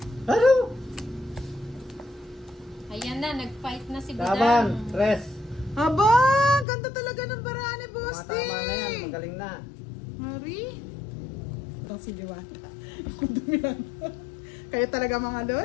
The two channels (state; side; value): drops out; right; at 6.7 s